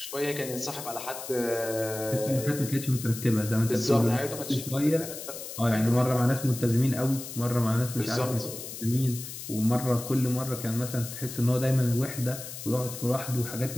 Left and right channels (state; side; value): noise; left; hiss, 10 dB below the sound